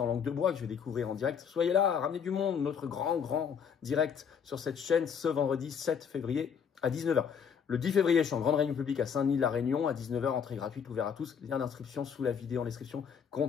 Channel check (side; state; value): right; quieter; 7.1 dB